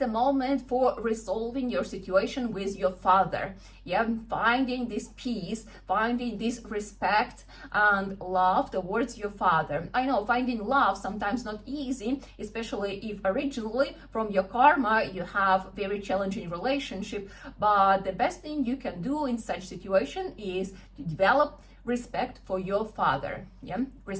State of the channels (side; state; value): both; identical; correlation 1.00